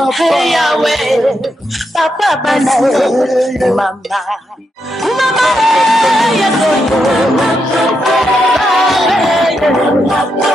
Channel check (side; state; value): both; normal; correlation 0.83